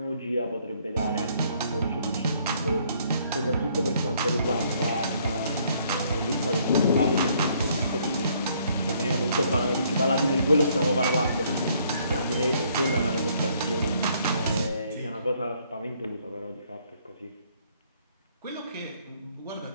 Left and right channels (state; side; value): inverted; both; correlation -0.65